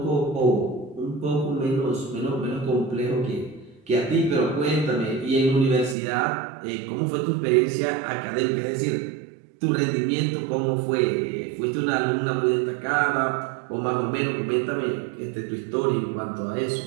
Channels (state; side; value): drops out; left; at 6.0 s